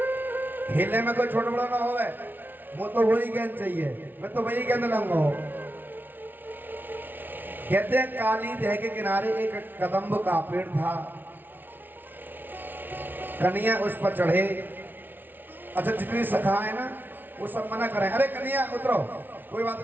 खेलने में कोई छोटा बड़ा ना होवे, वो तो वही गेंद चाहिए, मैं तो वही गेंद लूंगा। कहते हैं काली दह के किनारे एक कदम्ब का पेड़ था, कन्हैया उस पर चढ़े। अच्छा जितनी सखा है ना वो सब मना करें, अरे कन्हैया उतरो, कोई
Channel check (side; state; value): left; late; 0.091 ms